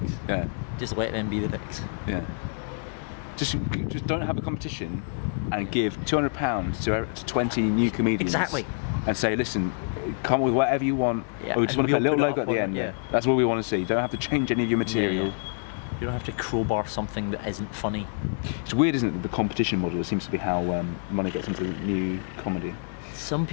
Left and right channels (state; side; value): silent; right; 60 dB below the other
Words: Yeah. Just let them be the dicks. Yeah. Just don't have a competition and give £200 to 20 new comedians. Exactly. And say, listen, come with whatever you want. Yeah. Or we just want to put a little logo at the end. Yeah. That's what we want to see. You don't have to change any of your material. You don't have to crowbar something that isn't funny. It's weird, isn't it? The competition model seems to be how money gets into new comedy. Some